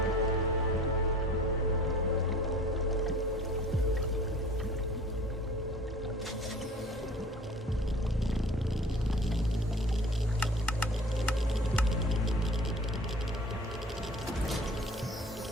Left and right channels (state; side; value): normal; both; correlation 0.45